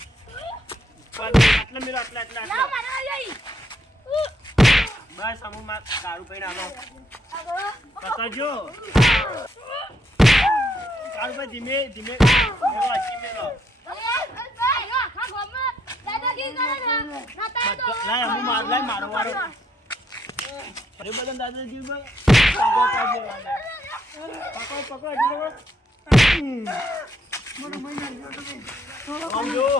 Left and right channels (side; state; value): both; normal; correlation 0.74